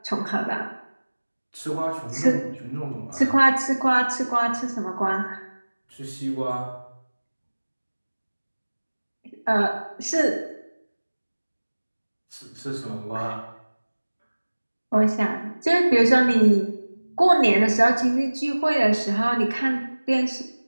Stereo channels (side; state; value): both; inverted; correlation -1.00